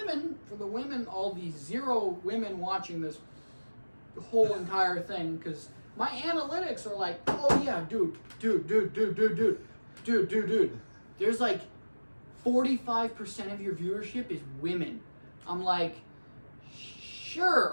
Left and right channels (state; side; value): inverted; both; correlation -1.00